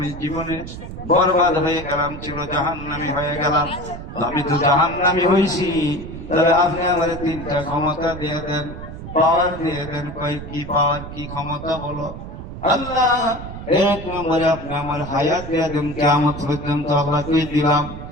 জীবনে বরবাদ হয়ে গেলাম, ছিল জাহান্নামী হয়ে গেলাম। আমি তো জাহান্নামী হইছি, তবে আপনি আমার তিনটা ক্ষমতা দিয়ে দেন, পাওয়ার দিয়ে দেন। কই কি পাওয়ার, কি ক্ষমতা বলো? আল্লাহ, এক নম্বরে আপনি আমার হায়াত দিয়ে দেন কিয়ামত পর্যন্ত, আল্লাহ কই দিলাম।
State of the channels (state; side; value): noise; right; rumble, 10 dB below the sound